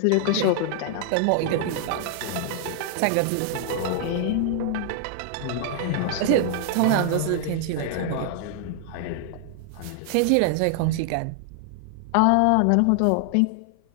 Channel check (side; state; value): both; different; correlation 0.00